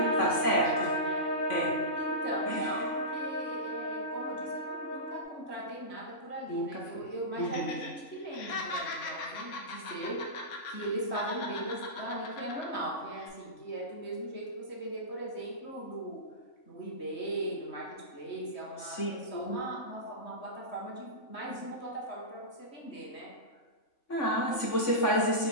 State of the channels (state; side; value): late; right; 3.5 ms